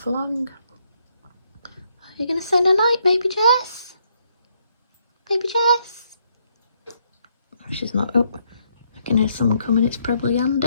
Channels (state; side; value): inverted; both; correlation -0.74